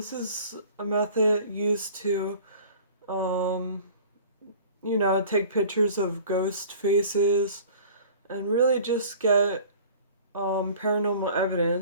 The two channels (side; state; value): both; inverted; correlation -0.46